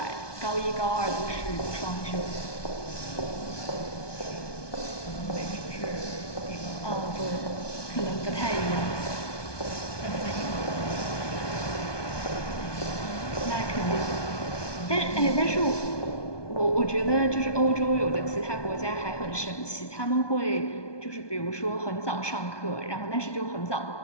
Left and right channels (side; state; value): right; late; 1.2 ms